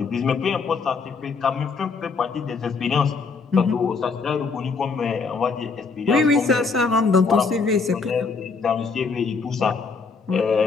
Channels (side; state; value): right; quieter; 4.8 dB